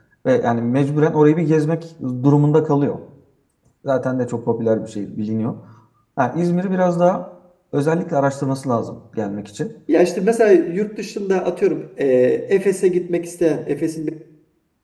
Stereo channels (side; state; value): both; identical; correlation 1.00